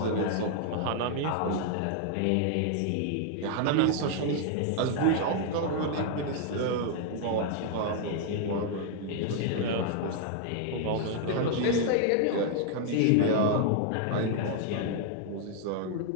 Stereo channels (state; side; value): different; both; correlation 0.00